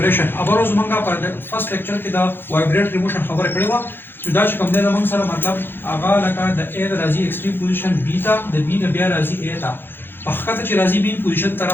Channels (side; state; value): right; late; 0.10 ms